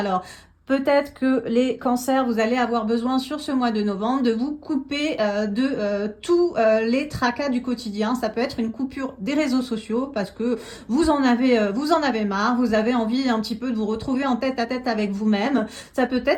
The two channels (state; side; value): identical; both; correlation 1.00